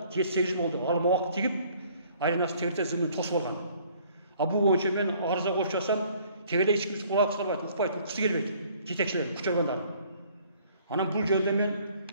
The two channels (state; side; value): inverted; both; correlation -0.58